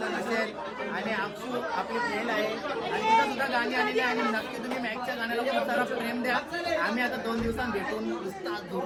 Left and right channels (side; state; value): both; identical; correlation 1.00